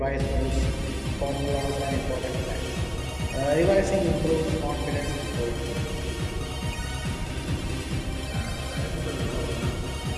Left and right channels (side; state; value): both; identical; correlation 1.00